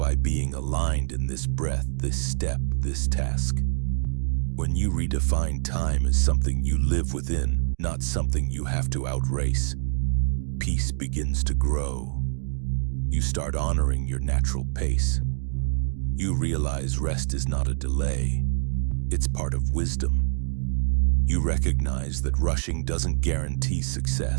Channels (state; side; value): silent; left; digital silence